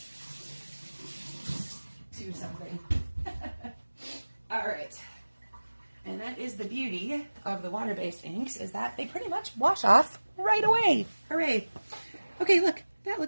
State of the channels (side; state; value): both; inverted; correlation -1.00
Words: to something. All right. And that is the beauty of the water-based inks, is that they pretty much wash off right away. Hooray. Okay, look. That